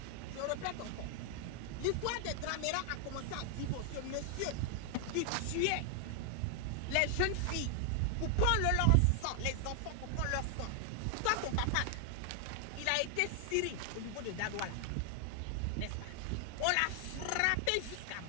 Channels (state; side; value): different; both; correlation 0.00